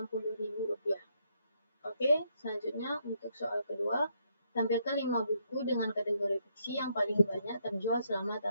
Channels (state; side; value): inverted; both; correlation -0.75